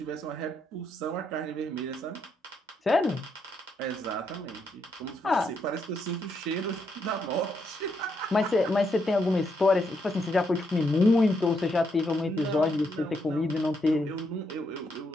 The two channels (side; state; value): both; normal; correlation 0.78